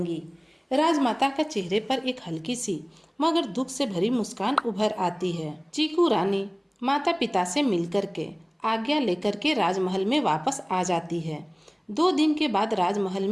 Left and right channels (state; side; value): identical; both; correlation 1.00